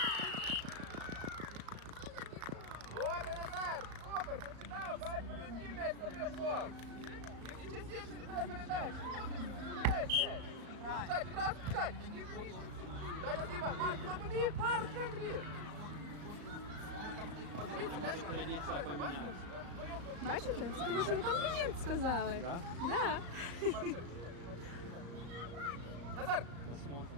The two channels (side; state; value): left; late; 35 ms